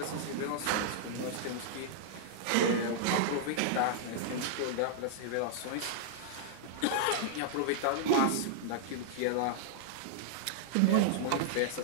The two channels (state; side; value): different; both; correlation -0.01